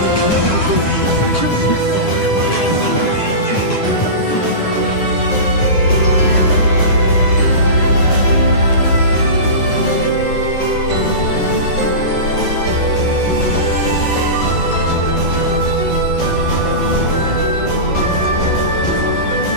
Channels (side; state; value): right; late; 9.9 ms